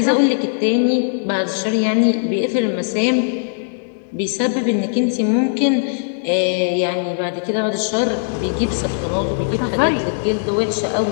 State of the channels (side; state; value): right; silent; 67 dB below the other